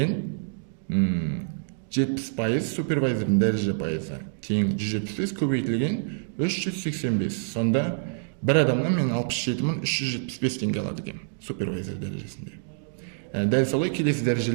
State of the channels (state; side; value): silent; left; digital silence